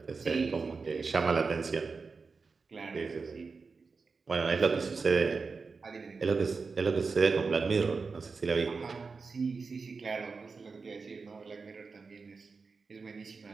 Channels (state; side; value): quieter; left; 4.6 dB